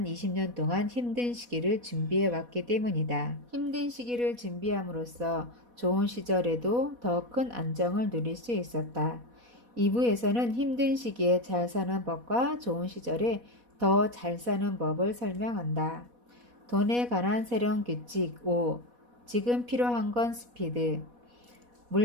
20년 동안 힘든 시기를 준비해 왔기 때문이다. 힘든 시기를 준비함으로써 좋은 시절에도 더 큰 안정을 누릴 수 있었다. 2부에서는 힘든 시기에 잘 사는 법과 좋은 시절에 더 잘 사는 법을 설명한다. 돈에 관한 새로운 규칙 5. 지금 필요한 건 스피드.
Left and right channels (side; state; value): left; late; 4.1 ms